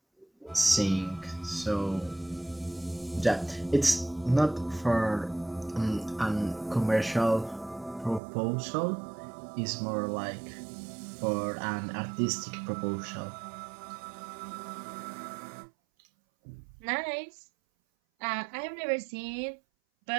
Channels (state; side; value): drops out; left; at 8.2 s